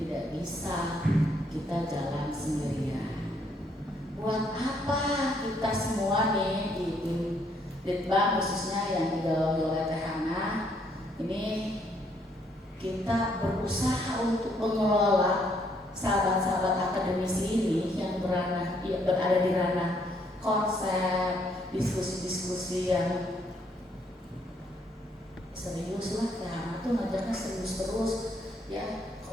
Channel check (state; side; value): normal; both; correlation 0.70